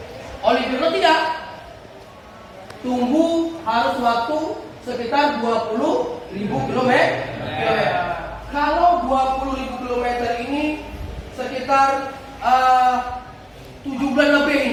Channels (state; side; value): identical; both; correlation 1.00